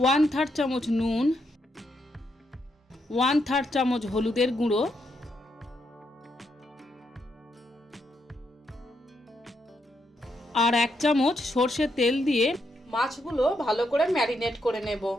1/3 চামচ নুন, 1/3 চামচ হলুদের গুঁড়ো, আর 1 চামচ সর্ষের তেল দিয়ে মাছগুলো ভালো করে ম্যারিনেট করে নেব।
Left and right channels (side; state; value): both; normal; correlation 0.79